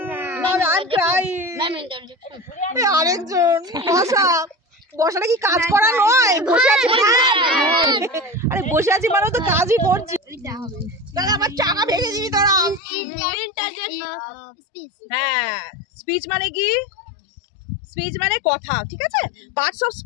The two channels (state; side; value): drops out; right; at 12.8 s